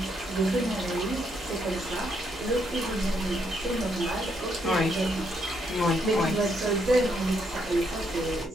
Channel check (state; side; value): normal; both; correlation 0.75